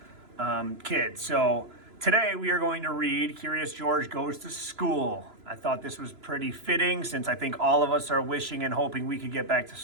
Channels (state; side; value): late; left; 3.0 ms